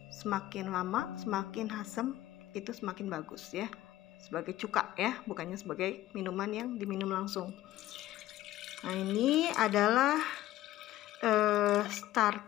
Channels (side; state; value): right; quieter; 15.0 dB